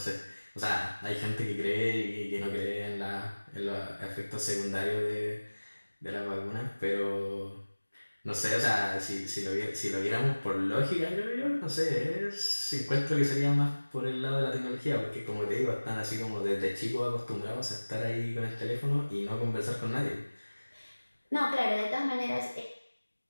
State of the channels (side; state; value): both; inverted; correlation -1.00